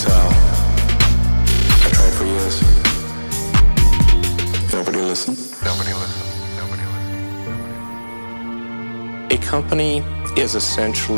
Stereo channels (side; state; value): both; inverted; correlation -1.00